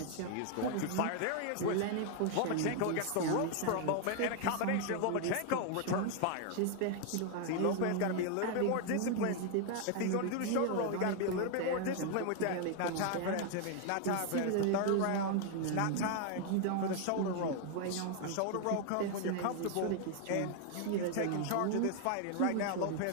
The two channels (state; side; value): different; both; correlation 0.00